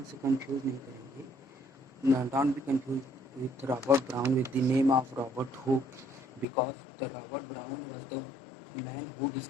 से कंफ्यूज नहीं करेंगे। Don't be confused with Robert Brown with the name of Robert Hooke, because the Robert Brown was the man who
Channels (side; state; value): right; drops out; at 6.5 s